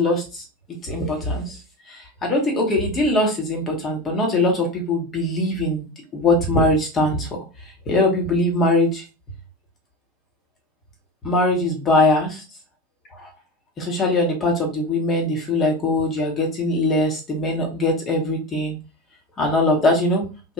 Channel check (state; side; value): normal; both; correlation 0.26